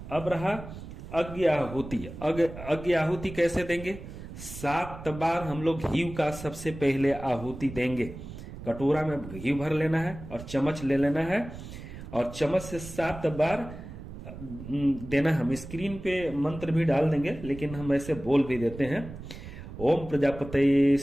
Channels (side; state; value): right; noise; rumble, 12 dB below the sound